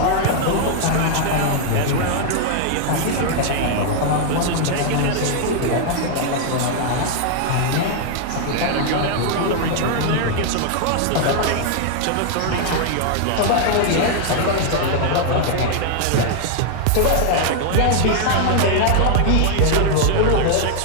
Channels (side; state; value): both; different; correlation 0.00